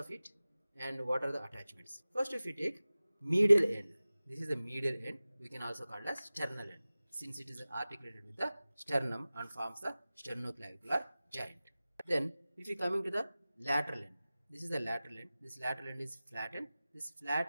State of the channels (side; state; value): both; inverted; correlation -0.97